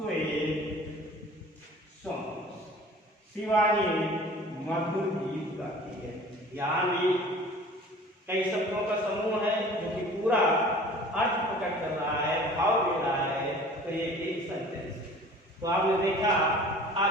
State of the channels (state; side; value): normal; both; correlation 0.46